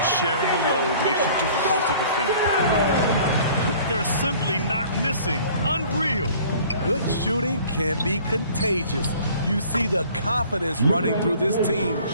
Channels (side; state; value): both; inverted; correlation -0.51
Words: sharing the load makes it difficult to defend. They're simply not missing. Unreal. Good shooting can be contagious. You see the confidence running through this team